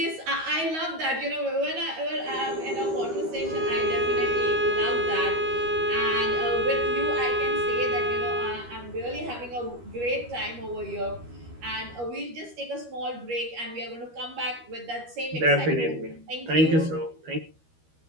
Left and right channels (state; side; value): late; left; 13 ms